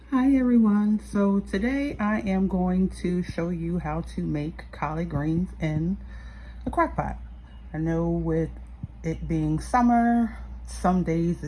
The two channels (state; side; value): identical; both; correlation 1.00